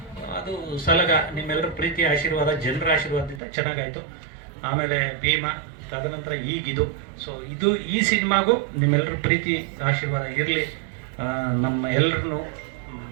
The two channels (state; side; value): drops out; left; at 3.4 s